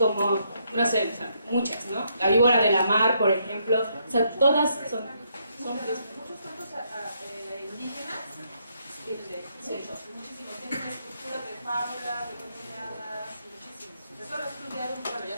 no sé, o sea, muchas, ¿no? La víbora de la mar, por ejemplo, o sea, todas son muchos cuentos indígenas, muchísimos, tienen estructuras de fábulas, de cuentos de hadas, muchísimos. Eso lo he estudiado, bueno,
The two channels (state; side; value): inverted; both; correlation -0.75